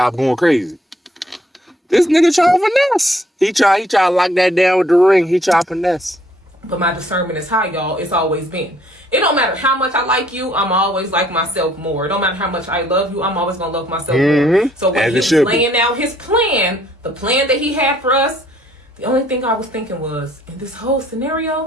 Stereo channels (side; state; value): both; normal; correlation 0.64